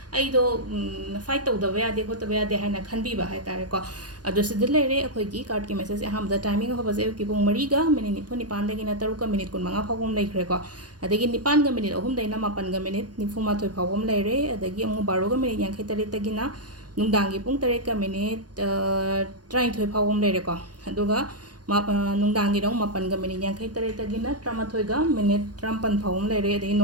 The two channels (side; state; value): left; late; 0.69 ms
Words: आइदो फाइट तौदबा यादे होतबा यादे हाइना खनबीबा हाइतारे को अदो सिदा लेरे अखोइगी कार्ड की मैसेज हमदा टाइमिंग होबसे की पुंग 4 गा मिनिट 9 दगिना 3 का मिनिट 15 फावम लेखरे को अदगी 9 का मिनिट 3 दैना 9 का मिनिट 94 फावम लेरे अदगी अमु 12 का मिनिट 53 तगिना नुंदांगी पुंग 3 का मिनिट 23 फावम लेरे को अदुगा नुंदांगी रंग 9 का मिनिट 53 तगिना 13 का मिनिट 53 फावम लेरे अदगी